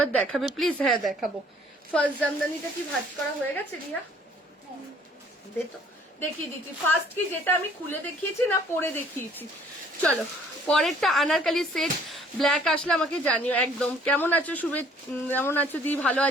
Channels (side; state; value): both; normal; correlation 0.58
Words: দেখাবে প্লিজ? হ্যাঁ দেখাবো। ফার্স্ট জামদানিটা কি ভাঁজ করা হয়ে গেছে রিয়া? দেখিয়ে দিচ্ছি। ফার্স্ট কি যেটা আমি খুলে দেখিয়েছি না পরে দেখিয়েছি? চলো পরেরটা আনারকালি সেট ব্ল্যাক আসলে আমাকে জানিও একদম। কেমন আছো শুভে? কেমন আছো দি? ভালো